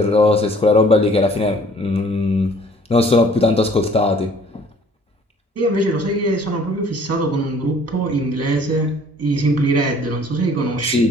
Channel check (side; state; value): both; normal; correlation 0.55